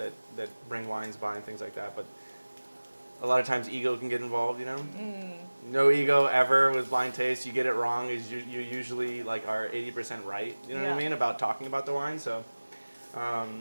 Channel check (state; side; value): inverted; both; correlation -1.00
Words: bring wines by and things like that. But a lot of times ego can get involved, you know. No ego ever with blind taste. You get it wrong, is you usually like are 80% right. You know what I Yeah. mean about talking about the wine. So